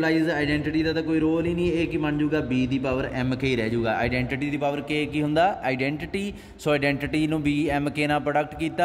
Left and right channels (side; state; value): both; identical; correlation 1.00